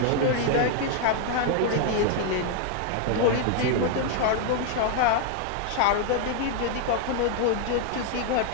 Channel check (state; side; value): different; both; correlation 0.00